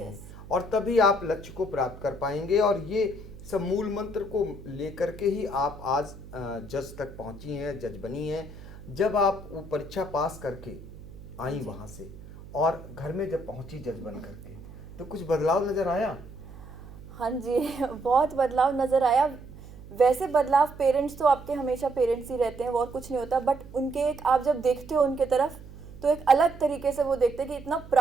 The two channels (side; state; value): right; noise; hum, 16 dB below the sound